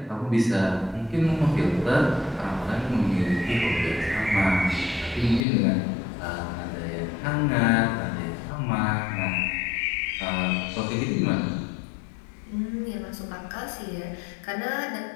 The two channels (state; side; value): drops out; right; at 5.5 s